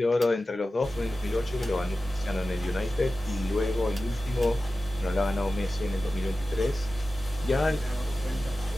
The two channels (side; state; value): both; normal; correlation 0.94